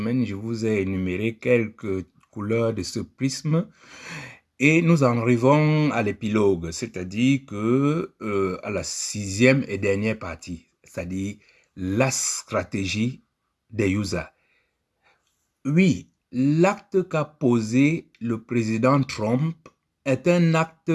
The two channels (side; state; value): both; identical; correlation 1.00